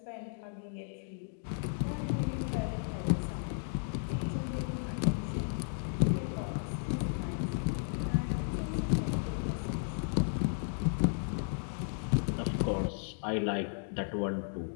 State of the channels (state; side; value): silent; right; digital silence